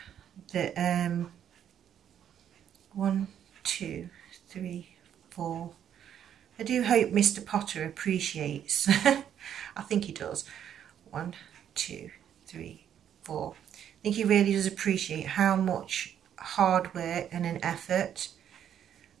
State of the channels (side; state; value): left; quieter; 9.6 dB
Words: that 1, 2, 3, 4. I do hope Mr. Potter appreciates. I think he does. 1, 2, 3, 4. I think he really does appreciate how much hard work and an effort